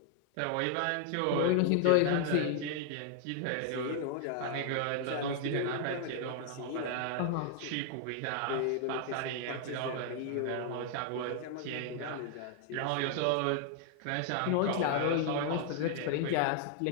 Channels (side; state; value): both; different; correlation 0.00